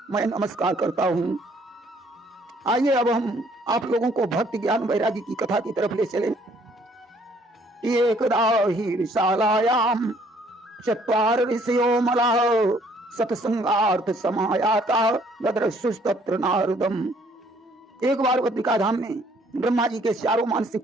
मैं नमस्कार करता हूँ। आइए अब हम आप लोगों को भक्ति ज्ञान वैराग्य की कथा की तरफ ले चले। एकदा ही विशालायाम चत्वार ऋषयो मलाः सत्संगार्थ समायाता ददृशुस्तत्र नारदम। एक बार बद्रिका धाम में ब्रह्मा जी के 4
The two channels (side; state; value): both; normal; correlation 0.62